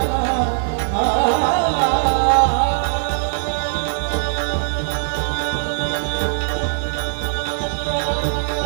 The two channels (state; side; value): silent; left; digital silence